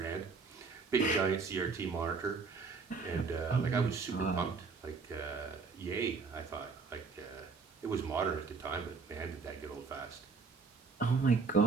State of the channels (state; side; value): quieter; left; 4.7 dB